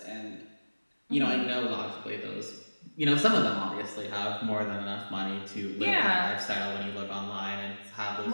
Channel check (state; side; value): inverted; both; correlation -1.00